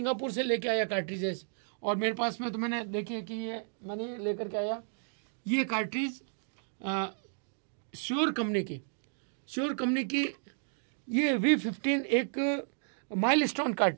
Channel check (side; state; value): left; silent; digital silence